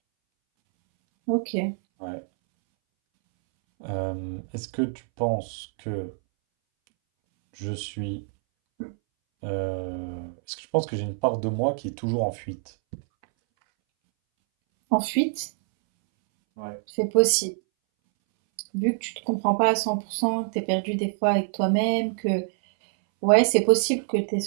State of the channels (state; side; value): silent; left; 61 dB below the other